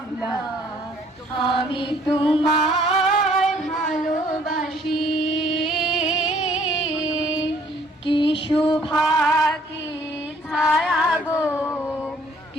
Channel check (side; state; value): both; normal; correlation 0.61